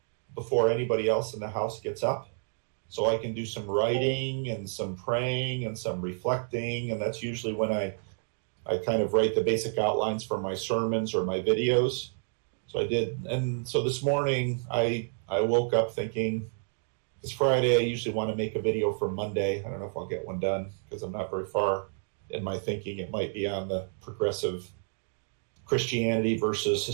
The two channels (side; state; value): left; silent; 58 dB below the other